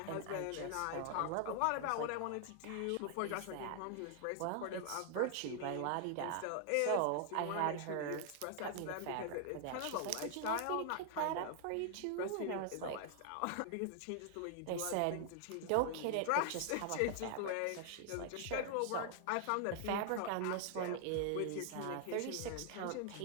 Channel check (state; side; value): different; both; correlation 0.00